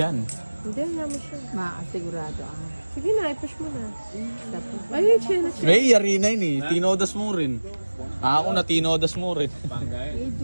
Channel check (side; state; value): both; inverted; correlation -1.00